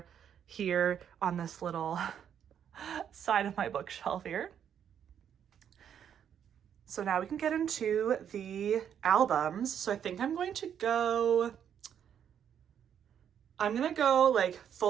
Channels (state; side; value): quieter; left; 8.8 dB